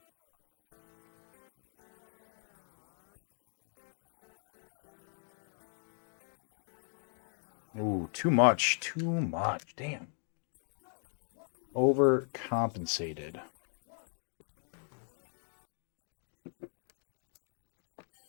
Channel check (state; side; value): silent; right; 52 dB below the other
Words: Ooh, too much. Too much. Damn. Overcompensated.